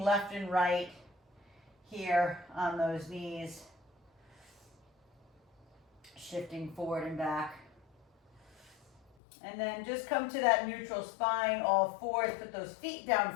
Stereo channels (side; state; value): right; drops out; at 9.0 s